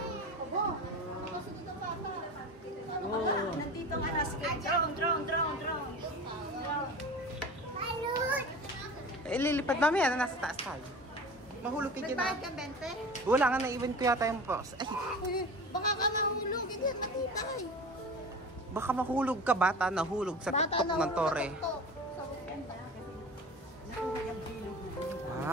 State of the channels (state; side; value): normal; both; correlation 0.34